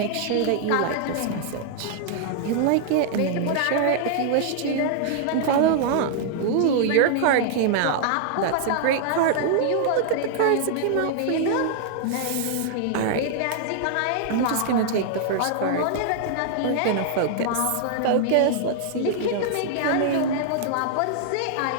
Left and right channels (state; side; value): different; both; correlation -0.01